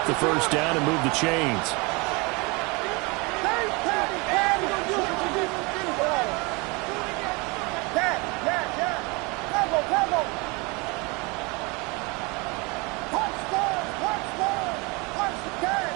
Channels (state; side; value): quieter; left; 27.8 dB